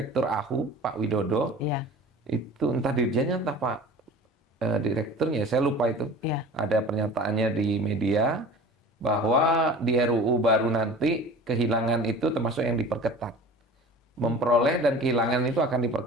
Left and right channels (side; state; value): both; normal; correlation 0.40